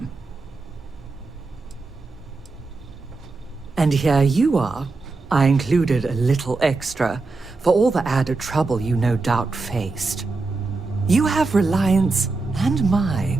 And here you are. I included a little extra for all the added trouble you no doubt faced. You have Reliance and my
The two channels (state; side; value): quieter; left; 3.8 dB